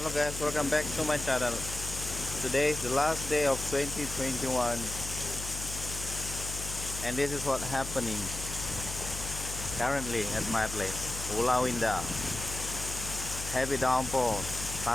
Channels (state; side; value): noise; left; hum, 8 dB below the sound